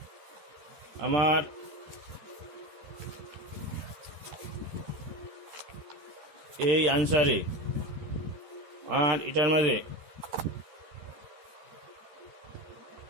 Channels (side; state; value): left; late; 13 ms